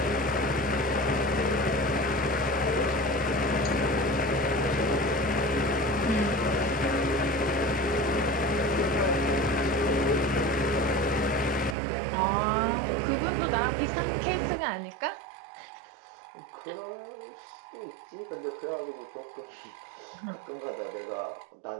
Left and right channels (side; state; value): left; drops out; at 11.8 s